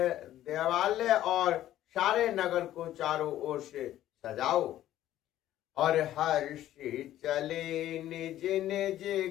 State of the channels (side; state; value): right; quieter; 13.1 dB